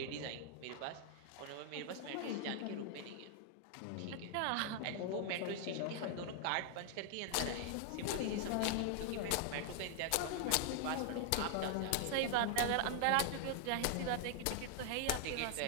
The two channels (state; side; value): different; both; correlation 0.00